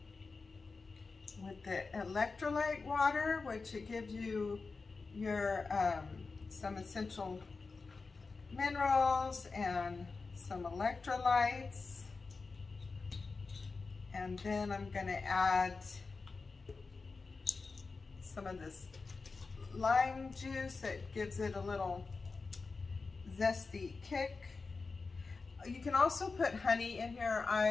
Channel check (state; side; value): quieter; right; 4.2 dB